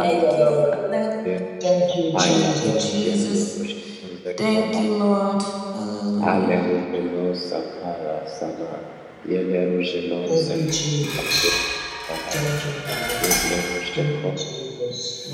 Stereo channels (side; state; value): both; identical; correlation 1.00